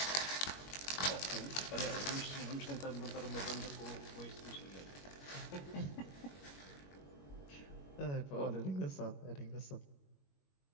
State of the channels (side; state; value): right; late; 21 ms